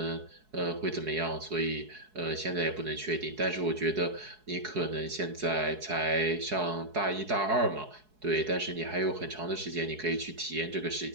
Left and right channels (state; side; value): late; left; 4.7 ms